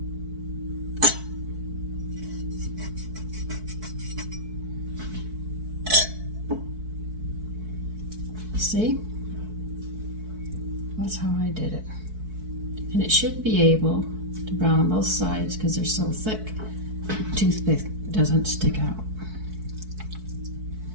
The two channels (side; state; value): left; late; 4.6 ms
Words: See? That's how I did it. And it should be able to brown on both sides because they're so thick. The toothpick doesn't stick out.